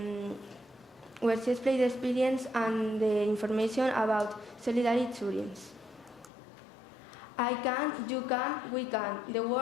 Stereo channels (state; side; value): drops out; right; at 6.3 s